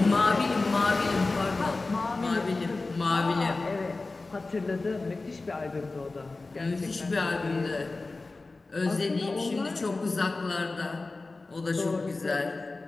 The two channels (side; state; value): right; quieter; 3.5 dB